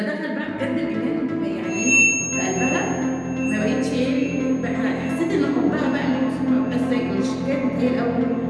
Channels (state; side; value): identical; both; correlation 1.00